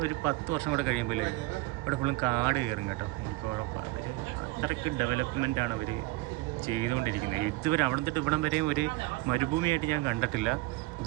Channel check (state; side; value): quieter; left; 20.7 dB